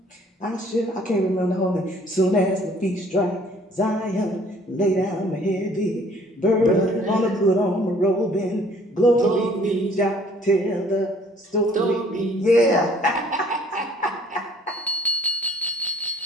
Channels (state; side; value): normal; both; correlation 0.57